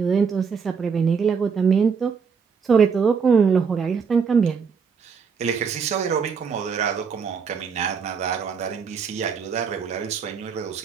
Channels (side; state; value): left; quieter; 6.0 dB